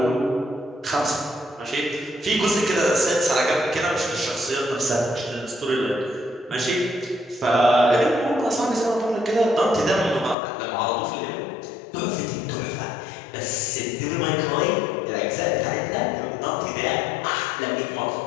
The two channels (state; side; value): drops out; right; at 10.4 s